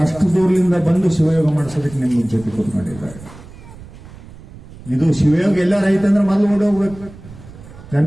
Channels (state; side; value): noise; right; rumble, 18 dB below the sound